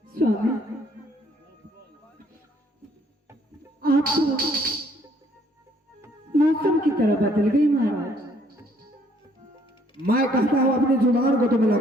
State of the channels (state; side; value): normal; both; correlation 0.64